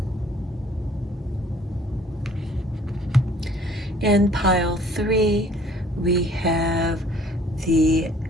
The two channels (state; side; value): normal; both; correlation 0.56